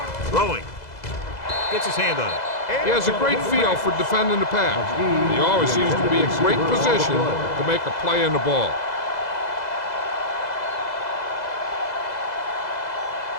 Throwing. Gets his hand on it. He has a great feel for defending the pass. He always seems to be in great position to make a play in the ball.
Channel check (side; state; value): right; late; 2.0 ms